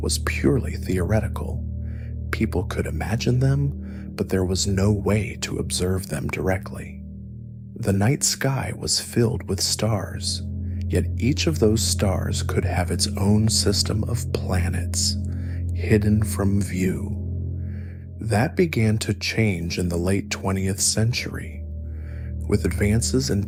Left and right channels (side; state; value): both; identical; correlation 1.00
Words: purely theoretical. People could imagine them, but there was no way to observe them directly. The night sky was filled with stars, yet each of those stars could have its own system of planets, hidden from view. That began to change in the late 20th century. With advances in